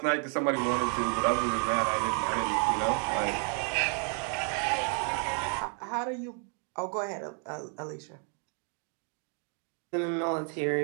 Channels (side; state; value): left; quieter; 39.6 dB